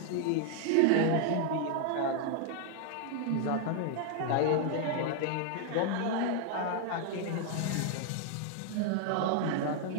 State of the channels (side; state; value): both; different; correlation 0.00